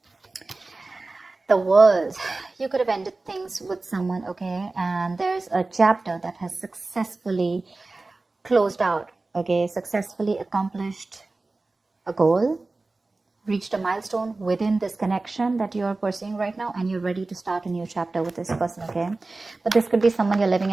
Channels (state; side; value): quieter; left; 3.4 dB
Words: The World. You could have ended things with someone, okay, and there's a chapter that has successfully closed out, okay, successfully accomplished a goal, reached a milestone within this connection that you're pursuing right now, and you're ready to start a new chapter with this person, okay. But this could be someone you're living